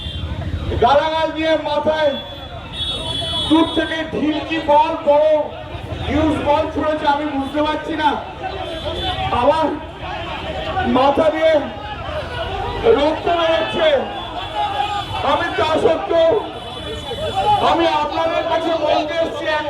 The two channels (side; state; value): both; identical; correlation 1.00